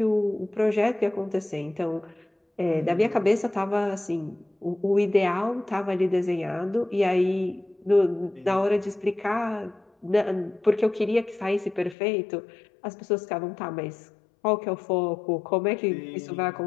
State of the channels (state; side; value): drops out; right; at 12.0 s